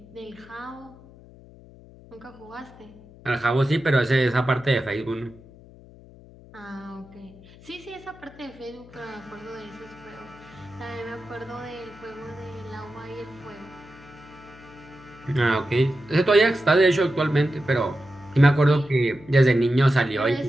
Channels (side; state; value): left; noise; hum, 21 dB below the sound